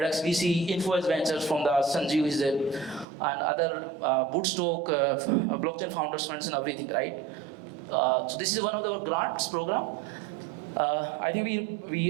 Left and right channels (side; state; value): left; drops out; at 3.1 s